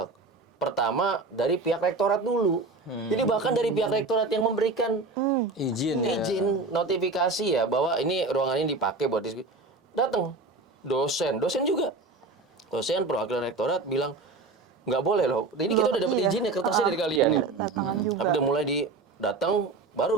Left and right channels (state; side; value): quieter; left; 3.6 dB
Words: Pertama dari pihak rektorat dulu. Jadi bahkan dari pihak rektorat yang memberikan Izin notifikasi ya bahwa ini ruangan ini dipakai buat diskusi. Datang dosen juga. Dosen perwakilan rektorat bilang nggak boleh loh. Ini kita udah dapat izin ya, kertasnya dari kalian ya. Tapi udah mulai datang